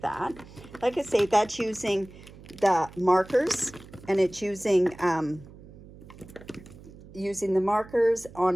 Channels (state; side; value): noise; right; hum, 19 dB below the sound